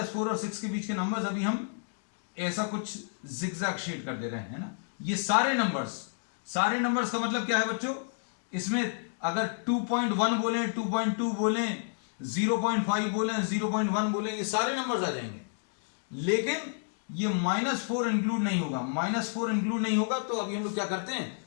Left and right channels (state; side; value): silent; right; digital silence